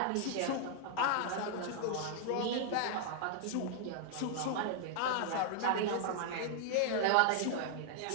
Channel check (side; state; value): both; different; correlation 0.00